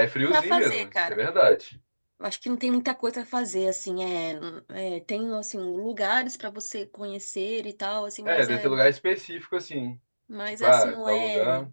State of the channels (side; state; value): both; inverted; correlation -1.00